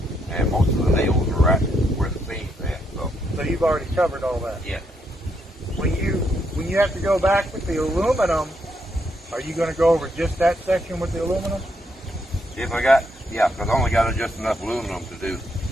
and most of the nails are right where the seams at. So you've already covered all that. Yeah. When you have to go back with the aluminum, are you going to go over just that section with the aluminum? Because I only got just enough aluminum to do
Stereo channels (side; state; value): both; normal; correlation 0.76